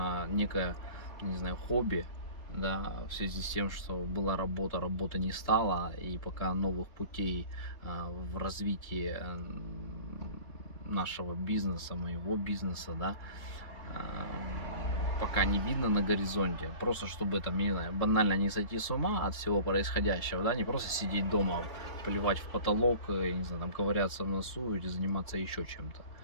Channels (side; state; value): right; late; 3.7 ms